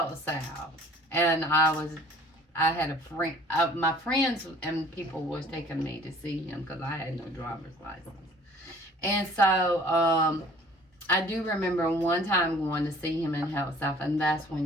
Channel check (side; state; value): both; normal; correlation 0.51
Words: South, and I had a friend, my friends and people was taking me to see him because I had no driver's license. And so I do remember one time going to see him in Health South, and that's